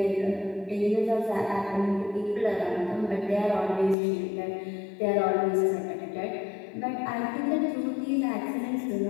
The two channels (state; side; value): drops out; right; at 4.0 s